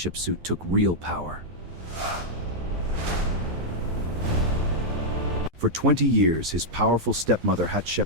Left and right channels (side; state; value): left; late; 12 ms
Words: took real power. For 20 years, his powerful stepmother